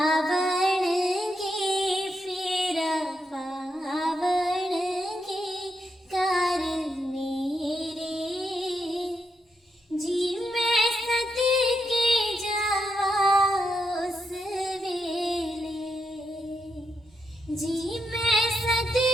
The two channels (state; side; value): normal; both; correlation 0.82